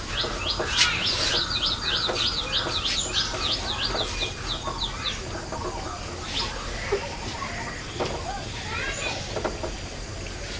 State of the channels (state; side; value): identical; both; correlation 1.00